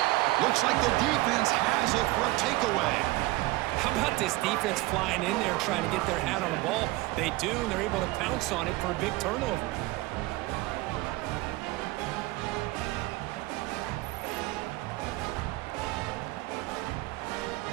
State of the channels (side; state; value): left; quieter; 19.9 dB